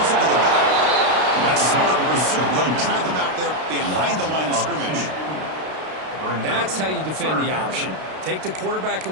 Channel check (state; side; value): late; left; 32 ms